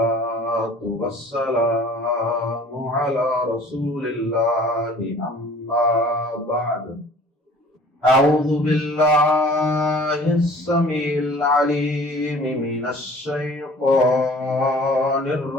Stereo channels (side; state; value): both; normal; correlation 0.49